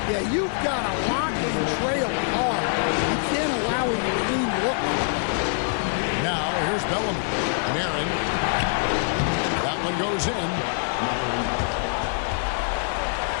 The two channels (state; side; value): silent; right; digital silence